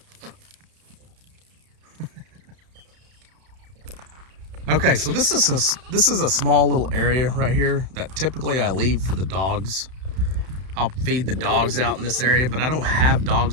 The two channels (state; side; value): late; left; 31 ms